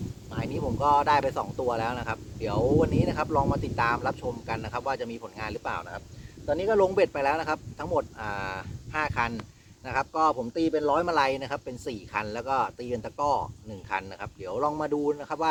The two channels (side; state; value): both; identical; correlation 1.00